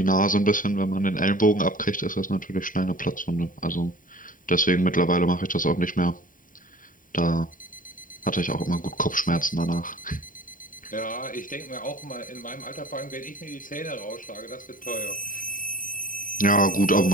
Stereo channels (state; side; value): late; right; 0.39 ms